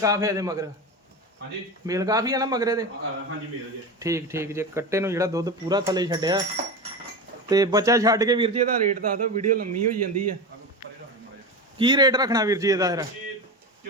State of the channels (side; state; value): both; normal; correlation 0.23